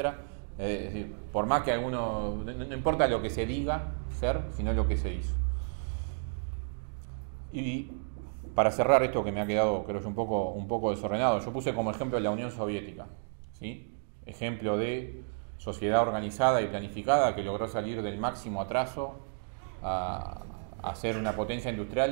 Es decir, por más que alguno, no importa lo que se diga ser, sino lo que se hizo. Y para cerrar esto que me ha quedado, creo yo, un poco desordenado, yo puse como ejemplo la Unión Soviética, ¿sí? Ejemplo de sociedad organizada y planificada que logró salir del máximo atraso a ser una potencia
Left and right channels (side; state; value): left; silent; digital silence